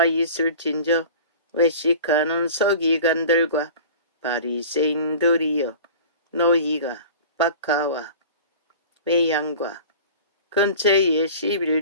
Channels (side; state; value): both; inverted; correlation -0.39